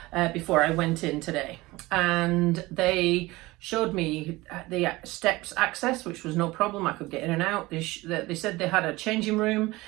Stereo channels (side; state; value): left; quieter; 20.4 dB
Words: before I went in today. And they showed me the steps access, which was no problem. I could get in and out. They said they had a changing room.